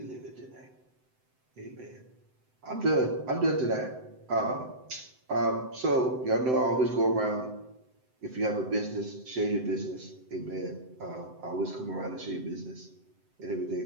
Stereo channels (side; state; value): left; late; 7.8 ms